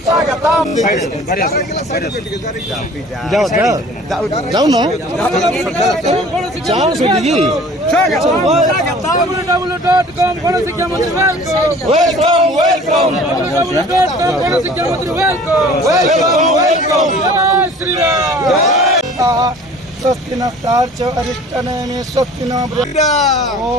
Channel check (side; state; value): both; normal; correlation 0.47